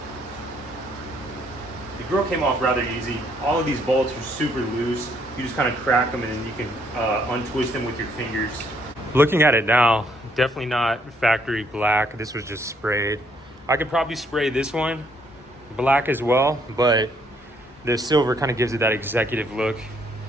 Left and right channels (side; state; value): both; normal; correlation 0.69